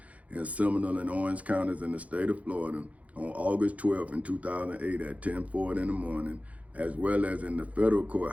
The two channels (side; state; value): left; late; 0.068 ms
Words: in Seminole and Orange counties in the state of Florida on August 12th in 2008 at 10:40 in the morning, as well as in the federal